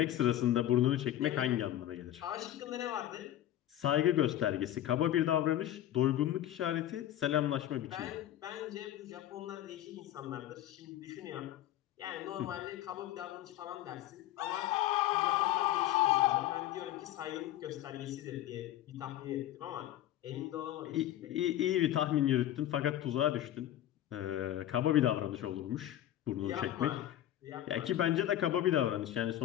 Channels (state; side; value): quieter; right; 12.7 dB